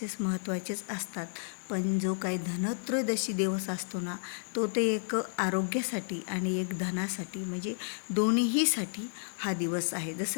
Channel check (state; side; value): silent; right; 56 dB below the other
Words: महत्त्वाचेच असतात, पण जो काही धनत्रयोदशी दिवस असतो ना, तो ते एक आरोग्यासाठी आणि एक धनासाठी म्हणजे दोन्हीसाठी हा दिवस आहे.